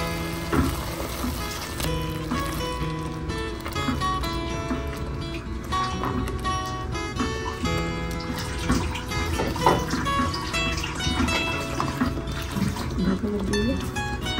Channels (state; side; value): identical; both; correlation 1.00